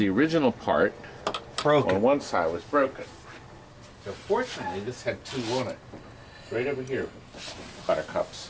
original part on one side was broken. So fortunately this had two on it. Right over here, buttercups.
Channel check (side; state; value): both; identical; correlation 1.00